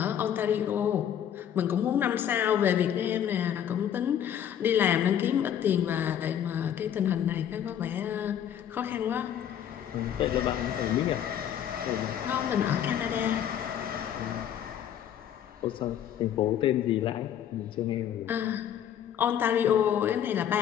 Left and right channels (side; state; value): right; quieter; 9.7 dB